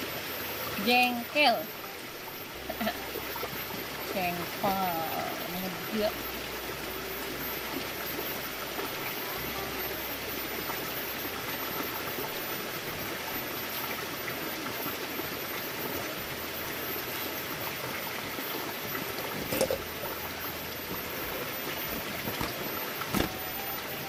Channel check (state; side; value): identical; both; correlation 1.00